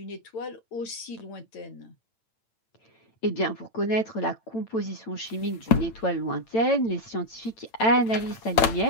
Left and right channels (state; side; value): late; right; 8.9 ms